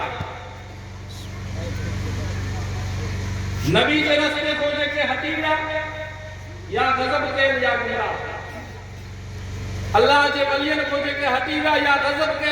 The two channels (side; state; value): both; identical; correlation 1.00